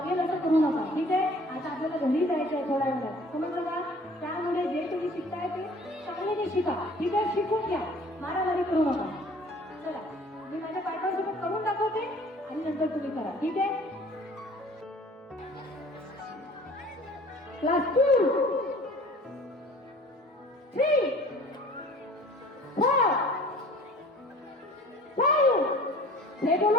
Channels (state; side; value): normal; both; correlation 0.49